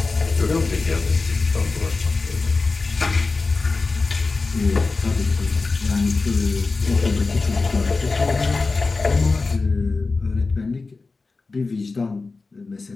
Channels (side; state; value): right; quieter; 3.9 dB